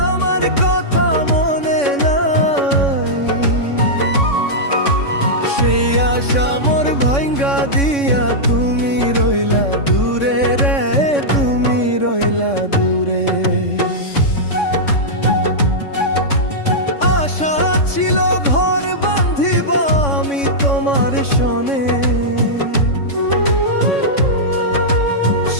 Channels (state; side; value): late; right; 3.6 ms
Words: আমার কথা মনে নাই। সেই আশা মোর ভাঙ্গা দিয়া তুমি রইলা দূরে রে, তুমি রইলা দূরে। আশা ছিল ঘর বাঁধিব আমি তোমার সনে,